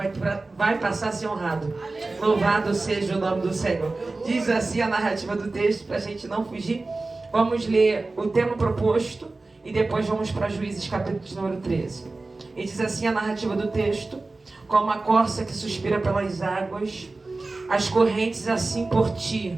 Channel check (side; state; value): left; quieter; 3.4 dB